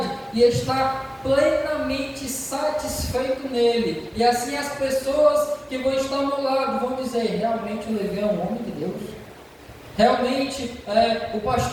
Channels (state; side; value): identical; both; correlation 1.00